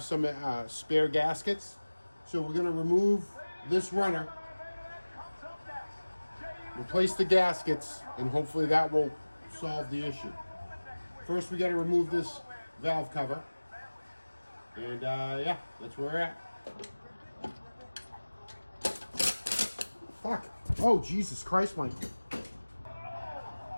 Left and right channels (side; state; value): both; inverted; correlation -1.00